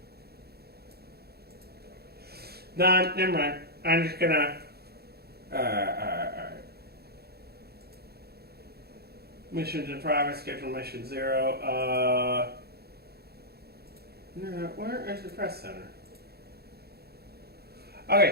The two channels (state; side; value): late; left; 0.46 ms